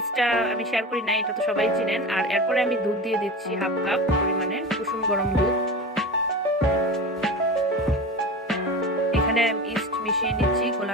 আমি শেয়ার করি না, এটা তো সবাই চিনেন। আর এরপরে আমি দুধ দিয়ে দিচ্ছি হাফ কাপ পরিমাণে, কুসুম গরম দুধ। এখানে ইস্ট মিশিয়ে নিচ্ছি,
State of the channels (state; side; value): normal; both; correlation 0.29